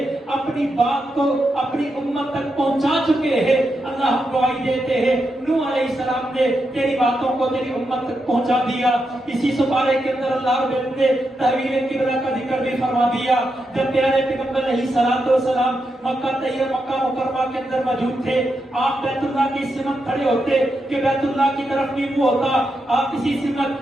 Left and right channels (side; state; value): both; normal; correlation 0.85